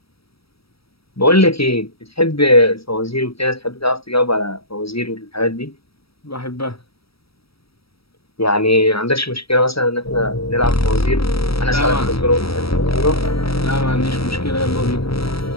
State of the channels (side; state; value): right; late; 0.76 ms